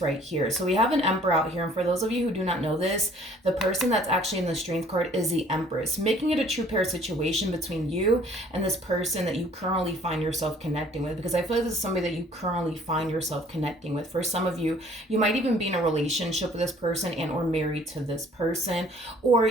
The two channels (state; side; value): normal; both; correlation 0.56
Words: right here. So we have an Emperor out here, and for those of you who do not know this, the person that's actually in the Strength card is the Empress, making it a true pair situation between you and this person that you currently find yourself connecting with, because I feel like this is somebody that you currently find yourself connecting with. For some of you, you might even be in a relationship with this person and or married to this person, or